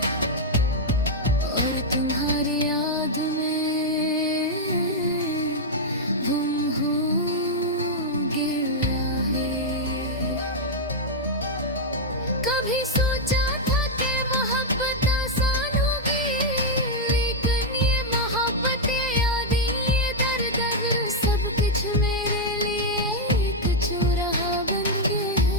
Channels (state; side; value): normal; both; correlation -0.02